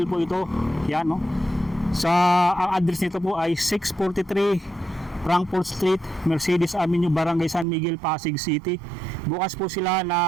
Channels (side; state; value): left; drops out; at 7.7 s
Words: po ito. Yan no. Ang address nito po ay 643 Frankfort Street, Mercedes Avenue, Barangay San Miguel, Pasig City. Bukas po sila